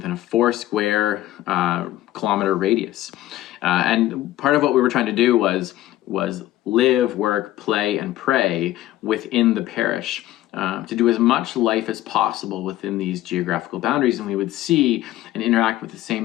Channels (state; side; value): quieter; right; 14.9 dB